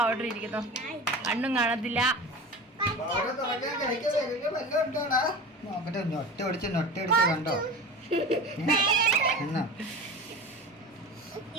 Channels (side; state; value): both; normal; correlation 0.32